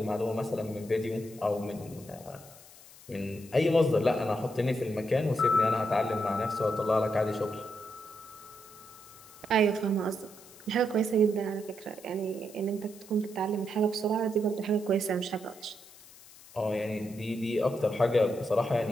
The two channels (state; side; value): noise; left; hiss, 21 dB below the sound